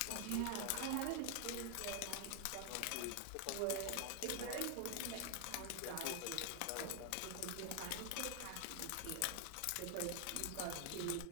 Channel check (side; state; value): both; different; correlation 0.00